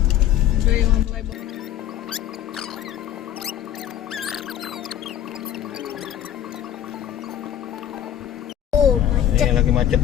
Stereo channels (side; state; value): right; quieter; 11.0 dB